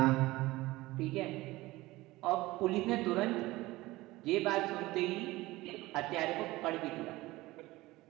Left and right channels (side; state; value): left; quieter; 19.2 dB